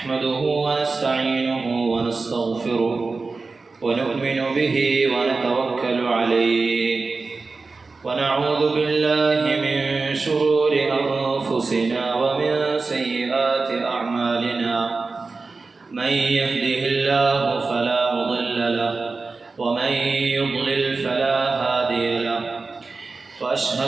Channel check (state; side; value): quieter; left; 4.0 dB